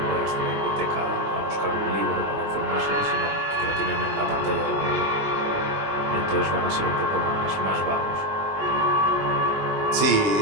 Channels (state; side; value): late; left; 20 ms